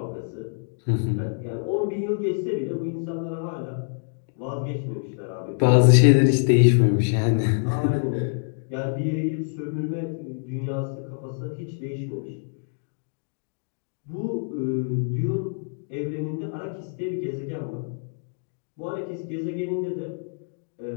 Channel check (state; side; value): silent; right; digital silence